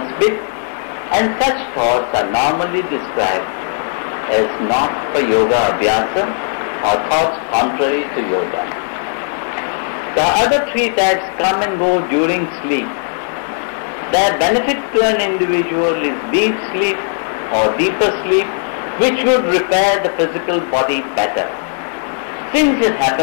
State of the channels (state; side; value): silent; right; digital silence